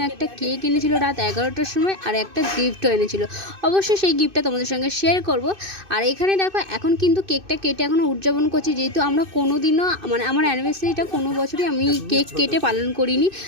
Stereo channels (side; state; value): left; late; 2.6 ms